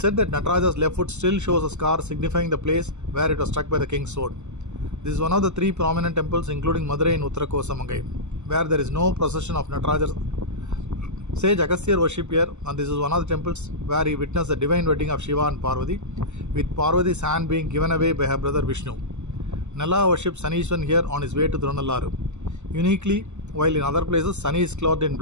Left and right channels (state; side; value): late; left; 0.83 ms